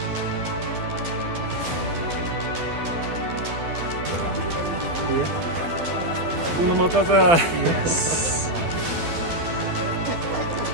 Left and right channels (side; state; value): left; late; 12 ms